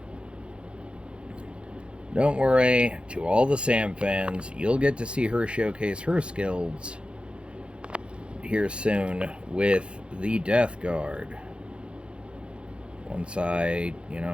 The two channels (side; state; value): left; late; 0.057 ms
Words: Don't worry, to all the Sam fans, you'll get to see her showcase her skills here soon with the Death Guard. Once I,